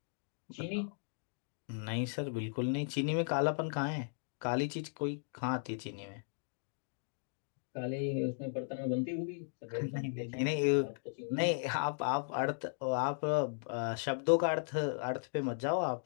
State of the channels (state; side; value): silent; right; digital silence